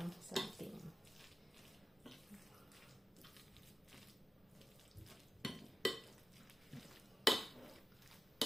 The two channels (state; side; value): normal; both; correlation 0.92